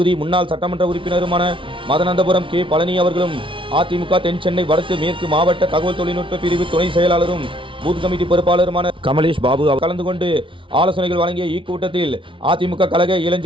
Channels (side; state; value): left; late; 0.25 ms